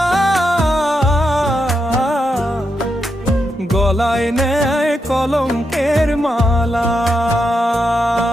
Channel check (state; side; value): normal; both; correlation 0.84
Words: গলায় নেয় কলঙ্কের মালা।